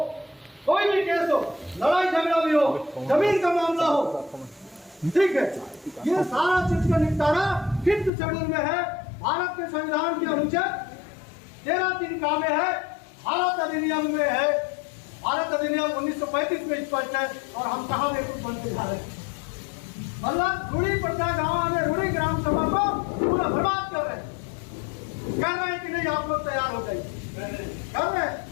कोई भी केस हो, लड़ाई झगड़ा भी हो, जमीन का मामला हो, ठीक है। ये सारा चीज का निपटारा 5th शेड्यूल में है, भारत के संविधान के अनुच्छेद 13(3) में है, भारत अधिनियम में है। भारत अधिनियम 1935 में स्पष्ट है, और हम कहाँ में कुछ बनते जा रहे हैं। मतलब रूढ़ी पट्टा गाँव में रूढ़ी ग्राम सभा को पूरा बर्बाद कर रहे हैं, कह रहे हैं कि नहीं आप लोग तैयार हो जाइए, कर रहे हैं।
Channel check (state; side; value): drops out; right; at 8.1 s